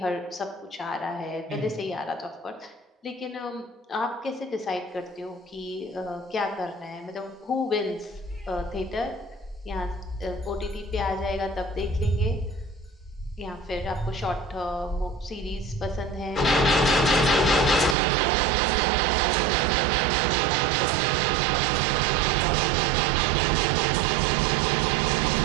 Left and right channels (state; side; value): drops out; left; at 17.9 s